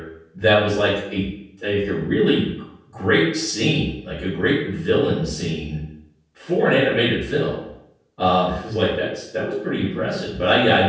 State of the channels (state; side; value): identical; both; correlation 1.00